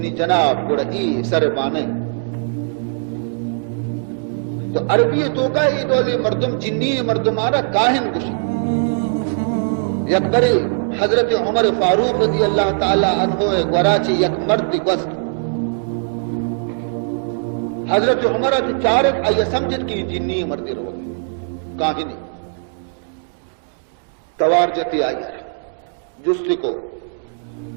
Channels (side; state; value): left; silent; digital silence